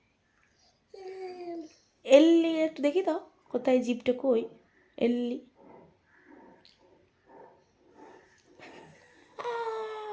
এল্লি একটু দেখি দাও কোথায় জিভটা কই এল্লি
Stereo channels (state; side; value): identical; both; correlation 1.00